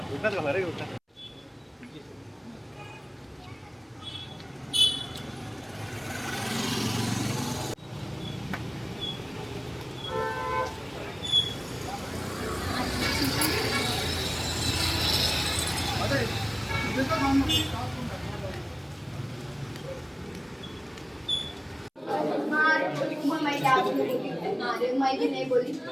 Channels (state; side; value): identical; both; correlation 1.00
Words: उठनाच घाला रे उठना मैं नहीं बोली